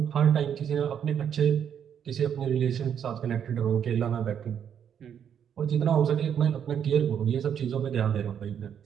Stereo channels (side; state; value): left; quieter; 8.5 dB